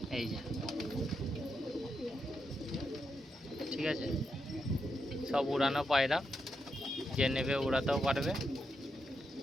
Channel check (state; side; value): normal; both; correlation 0.83